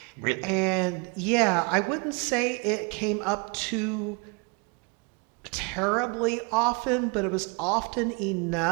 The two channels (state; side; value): quieter; left; 32.0 dB